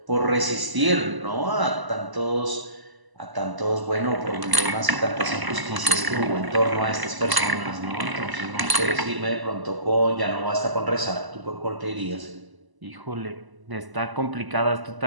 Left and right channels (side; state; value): left; late; 1.0 ms